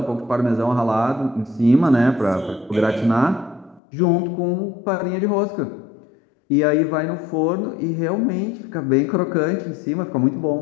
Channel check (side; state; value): right; drops out; at 3.8 s